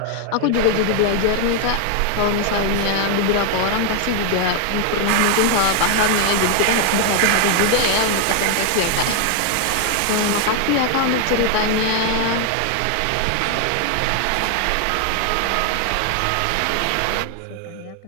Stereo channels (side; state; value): both; different; correlation 0.00